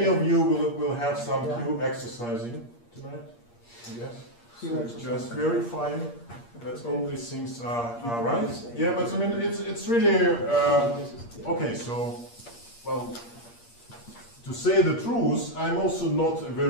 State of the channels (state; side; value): late; right; 8.5 ms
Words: of you will have some q exercising tonight, yes? So just verifying that all these things are right. Yeah, but I mean, it's really, okay, so, well, to say the truth, I'm also not a